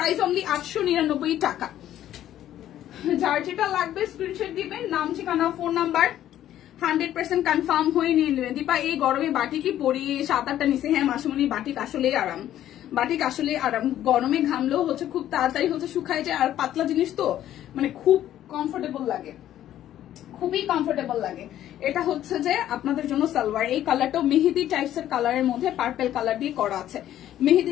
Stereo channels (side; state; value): right; quieter; 12.1 dB